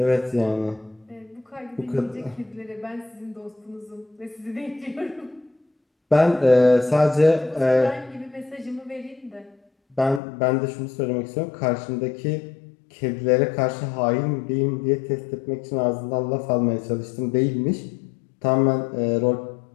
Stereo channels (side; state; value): right; drops out; at 10.2 s